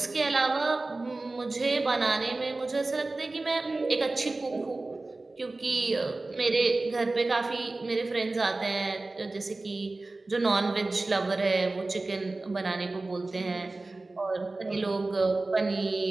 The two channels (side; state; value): left; quieter; 3.2 dB